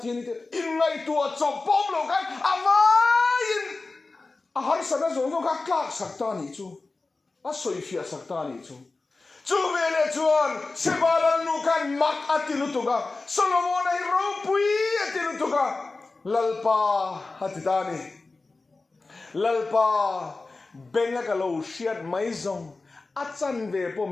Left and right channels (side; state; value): right; quieter; 3.6 dB